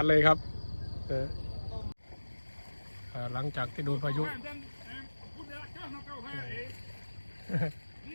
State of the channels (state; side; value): inverted; both; correlation -1.00